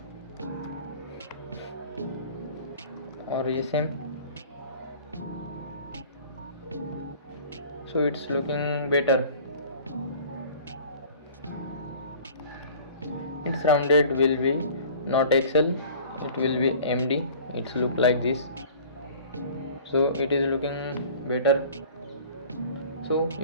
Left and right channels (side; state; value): both; inverted; correlation -0.46